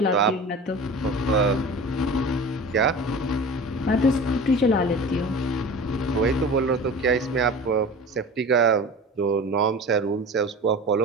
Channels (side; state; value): both; normal; correlation 0.36